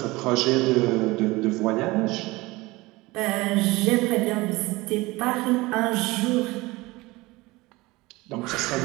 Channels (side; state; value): left; quieter; 21.4 dB